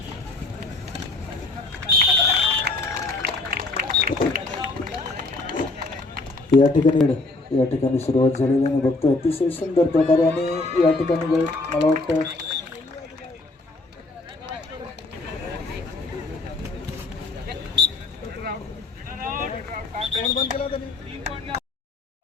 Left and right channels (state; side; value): quieter; right; 3.2 dB